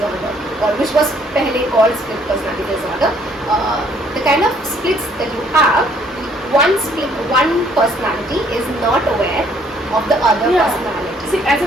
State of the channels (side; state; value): both; normal; correlation 0.64